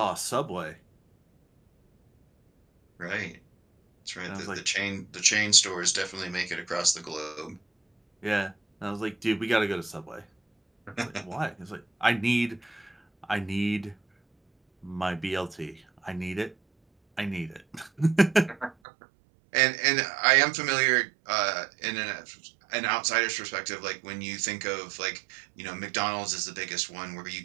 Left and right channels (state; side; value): drops out; left; at 18.8 s